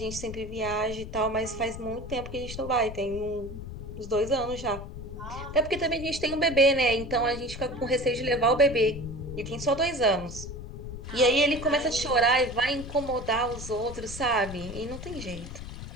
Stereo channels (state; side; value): noise; left; rumble, 10 dB below the sound